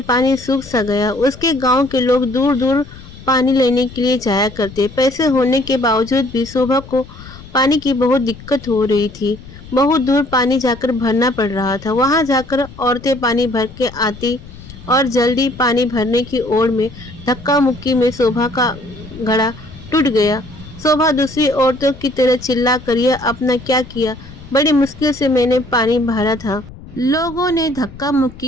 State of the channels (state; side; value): noise; left; rumble, 17 dB below the sound